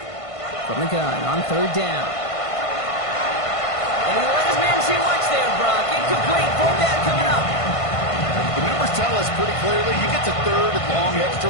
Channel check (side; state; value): right; late; 1.5 ms